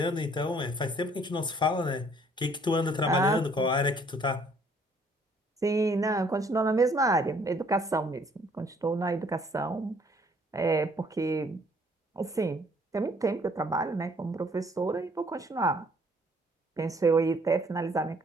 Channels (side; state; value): both; normal; correlation 0.61